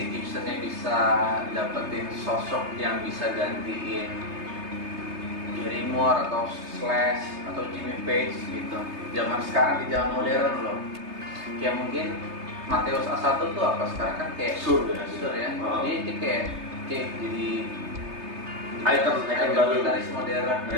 Gibsonnya bisa dapetin sosok yang bisa gantiin Gary Moore atau Slash atau Jimmy Page gitu. Zaman sekarang di zaman modern loh. Kayak mungkin Mateus A1 tuh apa sekarang kan kayak Sur ya. Dia kayak jadi Icon baru. gitaris modern.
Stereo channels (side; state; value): left; late; 3.3 ms